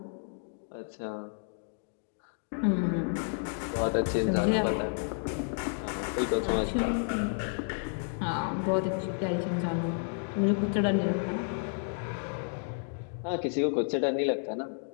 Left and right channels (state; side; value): silent; right; 57 dB below the other